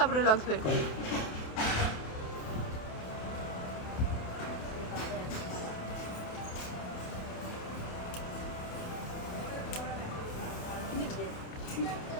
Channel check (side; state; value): right; late; 28 ms